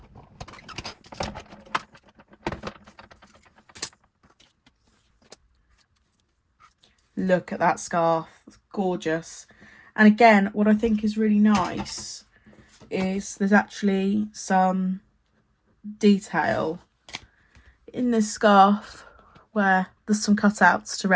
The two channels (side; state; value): both; identical; correlation 1.00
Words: Look at that scarf, it's gorgeous. And again, what I think is really nice is there's actually some detail in this scarf where there's some cutouts to